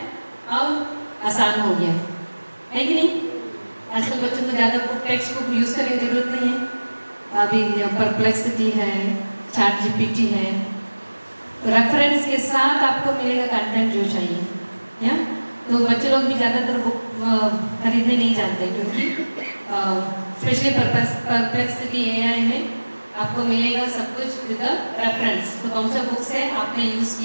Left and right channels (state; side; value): inverted; both; correlation -1.00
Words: और आसान हो गया है कि नहीं। आजकल बच्चों को ज़्यादा बुक टेक्स्ट बुक यूज़ करने की ज़रूरत नहीं है। अभी परप्लेक्सिटी है, ChatGPT है, रेफरेंस के साथ आपको मिलेगा कंटेंट जो चाहिए या। तो बच्चे लोग भी ज़्यादातर बुक खरीदने नहीं जाते, क्योंकि स्पेशली परप्लेक्सिटी AI में आपको मिलेगा सब कुछ विद रेफरेंस। तो कौन सा बुक्स है आपने यूज़